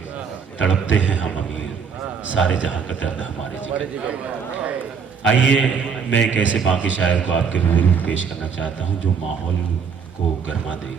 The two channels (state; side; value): quieter; left; 6.2 dB